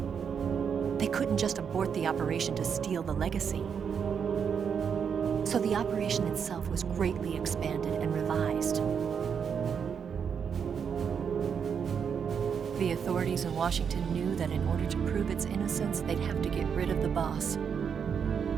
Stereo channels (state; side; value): quieter; left; 7.0 dB